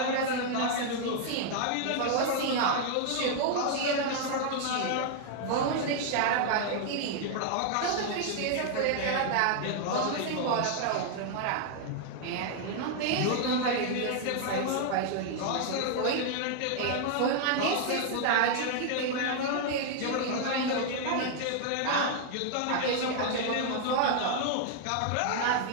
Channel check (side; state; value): both; different; correlation 0.00